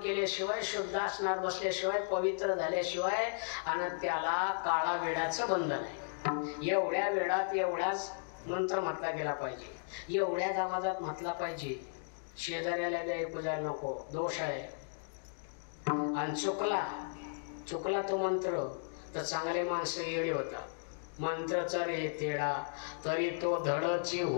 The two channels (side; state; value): right; silent; digital silence